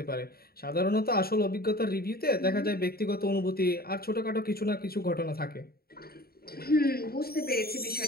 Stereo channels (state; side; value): late; right; 0.45 ms